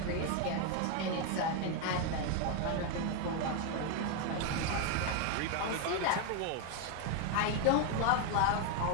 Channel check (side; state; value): both; different; correlation 0.01